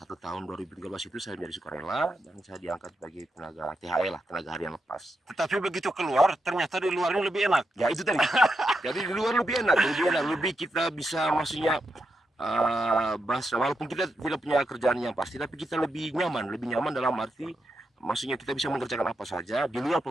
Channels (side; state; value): both; normal; correlation 0.85